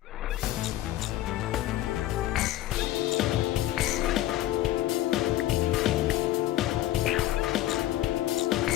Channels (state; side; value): quieter; right; 14.4 dB